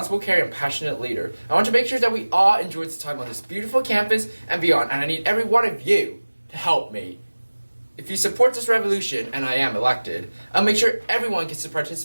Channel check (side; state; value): both; inverted; correlation -1.00